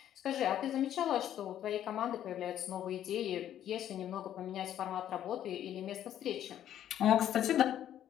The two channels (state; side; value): quieter; right; 11.0 dB